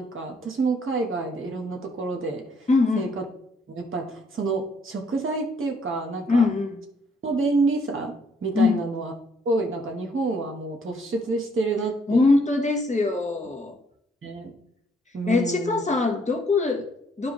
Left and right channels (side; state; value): both; normal; correlation 0.67